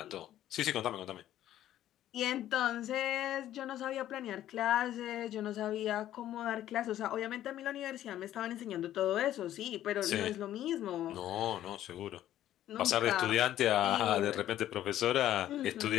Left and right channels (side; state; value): right; quieter; 12.5 dB